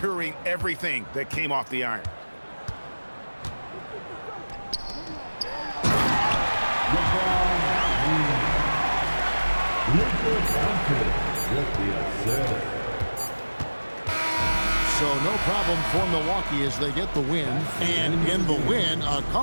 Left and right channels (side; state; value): both; inverted; correlation -1.00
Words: everything that came off the iron. So no problem for Milwaukee as they get the win. And in the win, a